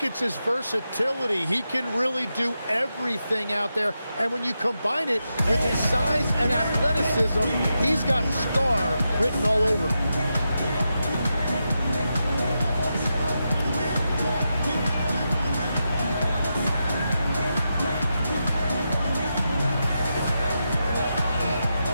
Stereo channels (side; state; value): both; inverted; correlation -0.87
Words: it's his versatility. He can really do everything out there. And when you combine it with his size and athleticism, he's got star written all over him.